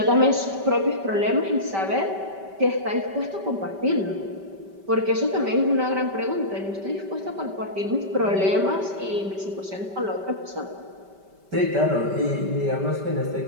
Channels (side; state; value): left; late; 5.1 ms